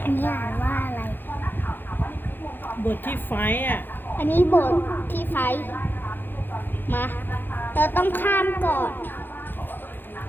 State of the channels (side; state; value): right; late; 0.096 ms